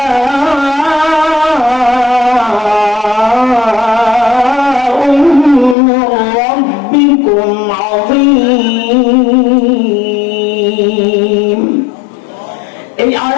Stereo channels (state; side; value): drops out; right; at 5.8 s